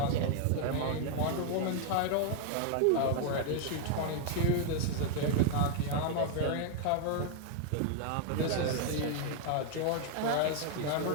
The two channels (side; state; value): both; different; correlation 0.00